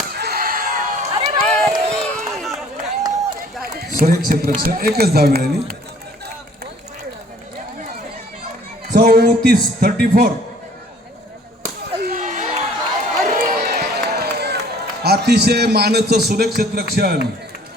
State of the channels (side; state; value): both; normal; correlation 0.55